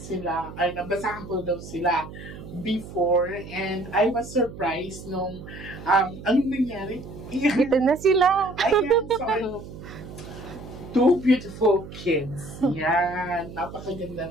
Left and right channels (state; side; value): noise; right; hum, 13 dB below the sound